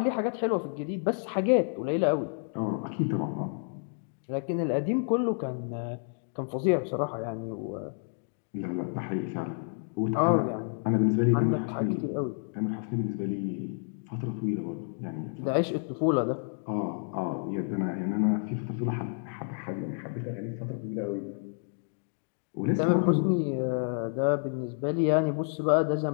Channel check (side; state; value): right; silent; digital silence